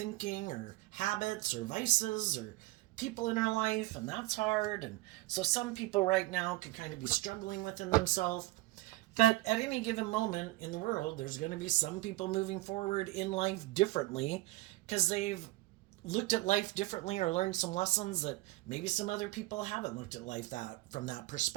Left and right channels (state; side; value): quieter; left; 19.7 dB